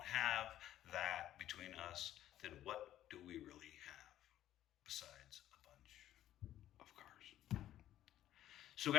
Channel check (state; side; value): quieter; right; 12.6 dB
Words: have that between us, then what do we really have besides a bunch of cars? So